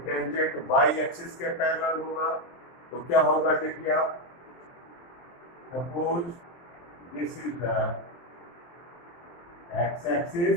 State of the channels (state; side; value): late; right; 23 ms